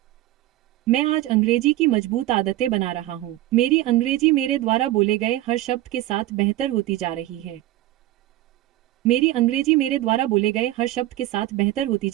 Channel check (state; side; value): quieter; left; 15.4 dB